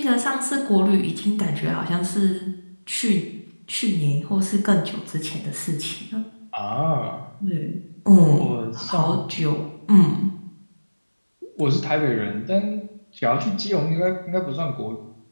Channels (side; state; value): both; inverted; correlation -1.00